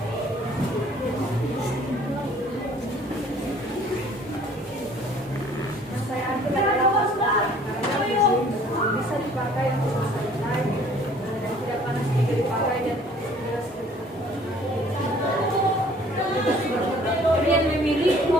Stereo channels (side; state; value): both; normal; correlation 0.55